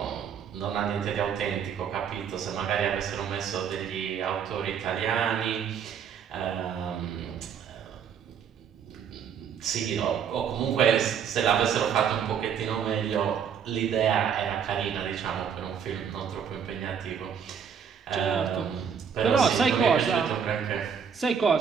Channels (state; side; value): quieter; left; 7.5 dB